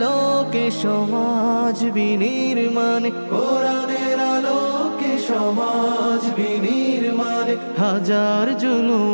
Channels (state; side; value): inverted; both; correlation -1.00